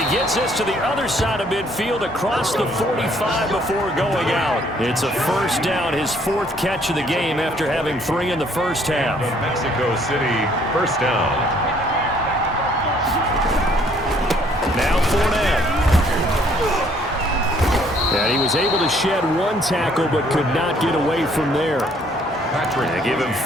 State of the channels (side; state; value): both; normal; correlation 0.63